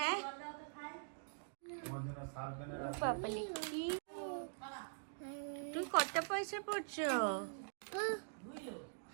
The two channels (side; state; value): left; silent; digital silence